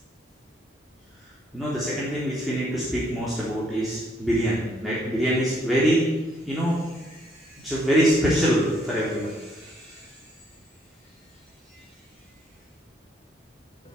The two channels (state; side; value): normal; both; correlation 0.69